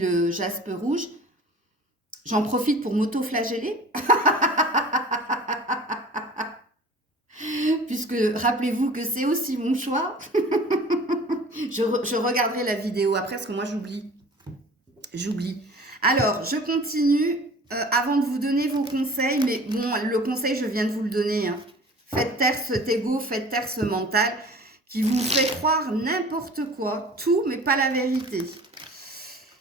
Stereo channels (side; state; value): both; normal; correlation 0.44